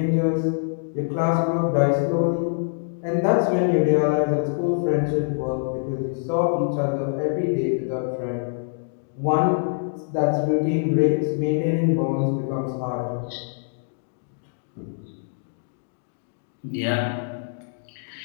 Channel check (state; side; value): silent; right; digital silence